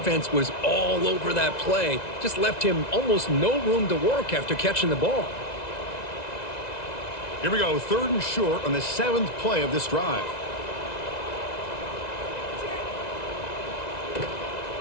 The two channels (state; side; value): late; right; 1.9 ms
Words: was all over that play. Just left him almost no room to work after catching the ball. Here we go, 3rd and short on the 7th play of this drive.